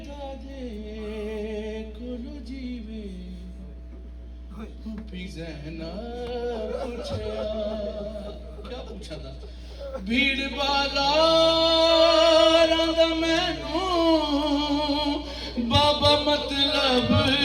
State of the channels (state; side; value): identical; both; correlation 1.00